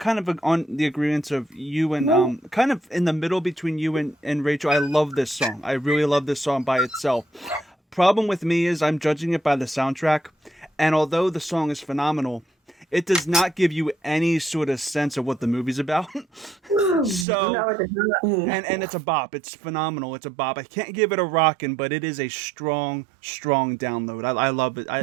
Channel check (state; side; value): drops out; left; at 17.2 s